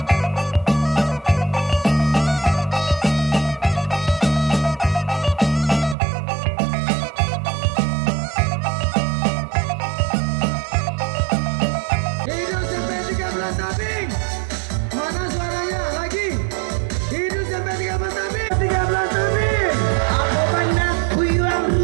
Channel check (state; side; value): drops out; left; at 6.0 s